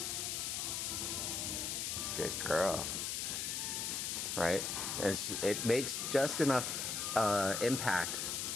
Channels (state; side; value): noise; left; hiss, 1 dB below the sound